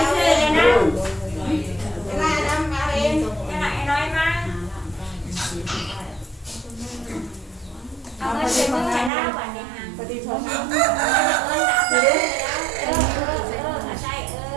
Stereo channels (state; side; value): drops out; left; at 9.1 s